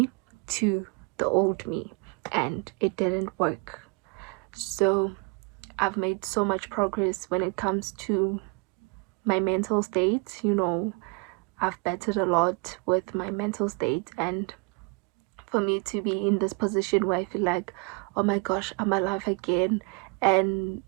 to the old me, and it didn't work. So I've made so much progress when it comes to my mental state. I've bettered a lot with my mental state, and for me to be in this position where I feel like, oh my gosh, I'm alive again, and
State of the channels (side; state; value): left; quieter; 31.4 dB